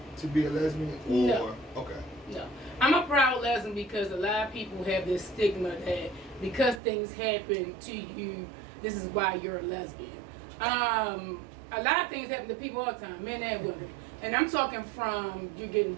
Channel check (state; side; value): drops out; left; at 6.8 s